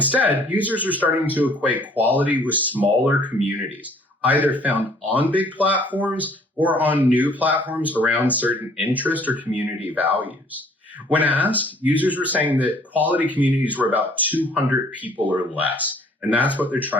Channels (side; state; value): both; normal; correlation 0.58